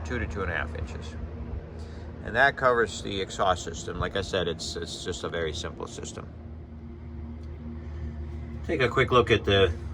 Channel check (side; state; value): both; identical; correlation 1.00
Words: to 2.5 inches. And that covers the exhaust system. Like I said, it's just a very simple system. Take a quick look at